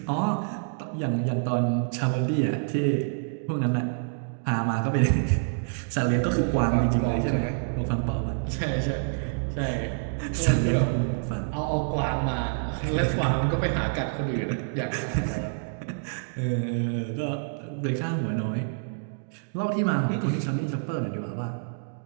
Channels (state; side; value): silent; left; digital silence